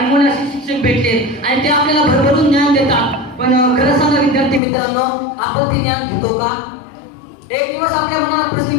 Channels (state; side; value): drops out; right; at 4.6 s